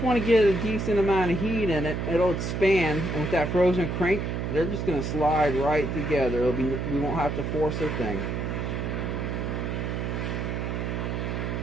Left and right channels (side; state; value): right; noise; hum, 2 dB below the sound